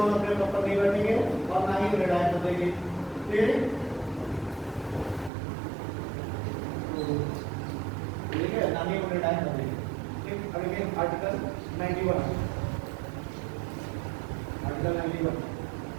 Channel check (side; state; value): left; drops out; at 5.3 s